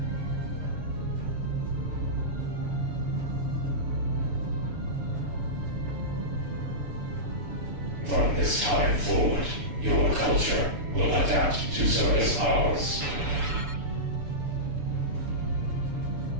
From this time forward, your culture will adapt to service ours.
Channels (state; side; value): late; left; 6.9 ms